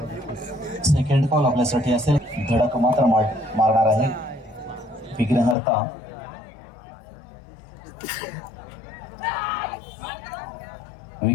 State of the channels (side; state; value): right; drops out; at 5.6 s